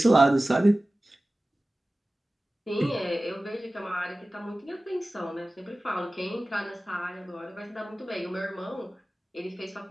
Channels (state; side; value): normal; both; correlation 0.97